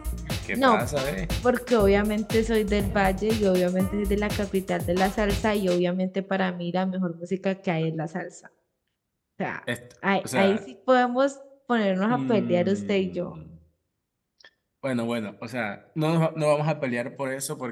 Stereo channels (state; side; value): identical; both; correlation 1.00